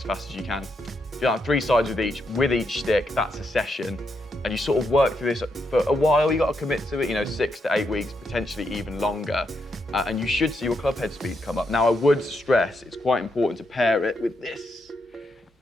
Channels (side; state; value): both; normal; correlation 0.80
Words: fast as you can. You have 3 sides with each stick, that's a session. And you sort of work through this for a while. You got to commit to it, 6 to 8 weeks, potentially even longer. And you should see your club head speed come up. Now, I would stress it's quite important to pair it with this,